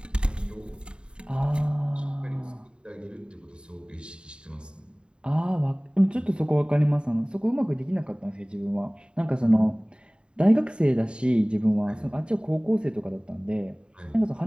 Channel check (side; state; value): left; late; 0.051 ms